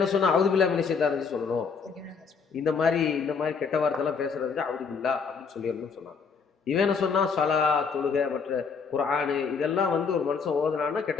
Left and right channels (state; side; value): quieter; right; 5.6 dB